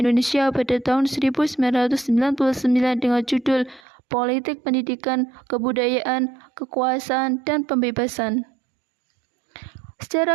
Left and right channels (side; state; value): left; drops out; at 3.8 s